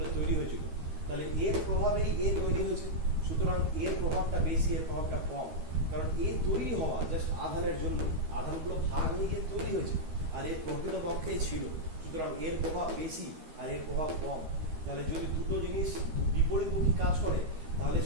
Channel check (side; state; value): left; late; 13 ms